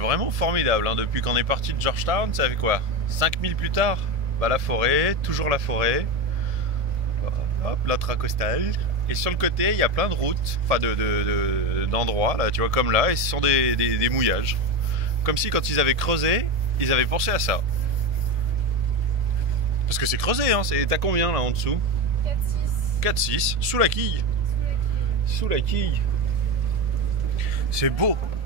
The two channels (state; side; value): late; left; 1.7 ms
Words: formidable. Hein. Depuis qu'on est parti de Georgetown, ça fait quoi 5000 plus tard, bah, la forêt, toujours la forêt. Hop, l'intracostal. Et sur le côté, il y a plein de routes, enfin d'endroits, là, tu vois, comme là, et ce sont des mouillages. Comme si quand ils avaient creusé, ils avaient pensé à ça. Parce que c'est creusé, hein, t'as combien là en dessous? 4,6. 4,6, sous la quille. Sous la quille. C'est beau.